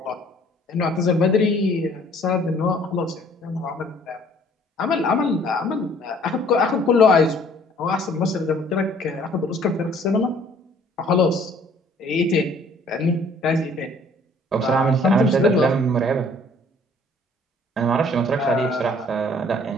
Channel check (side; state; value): both; normal; correlation 0.57